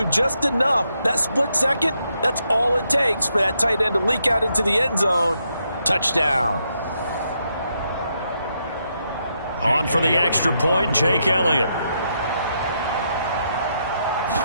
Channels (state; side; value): inverted; both; correlation -0.79